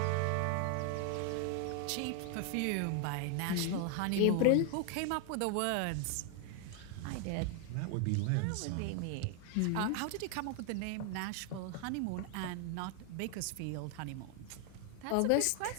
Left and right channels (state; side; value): different; both; correlation 0.00